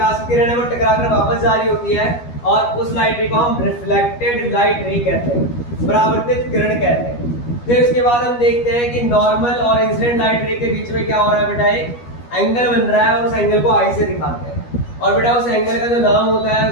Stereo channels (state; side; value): late; right; 12 ms